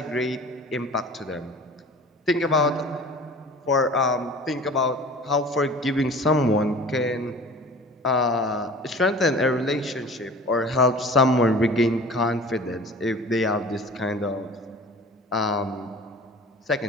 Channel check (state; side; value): normal; both; correlation 0.43